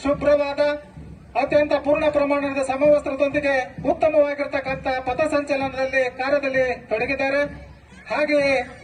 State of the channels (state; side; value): identical; both; correlation 1.00